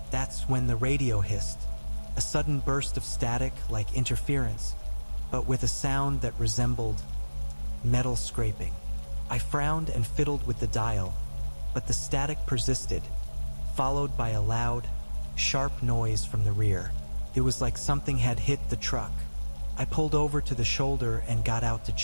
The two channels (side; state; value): both; inverted; correlation -1.00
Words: That's when the radio hissed, a sudden burst of static like interference, but with a sound that resembled metal scraping. I frowned and fiddled with the dial, but the static persisted, followed by a loud, sharp noise from the rear. It was like something had hit the truck. I pulled over to the shoulder and got out to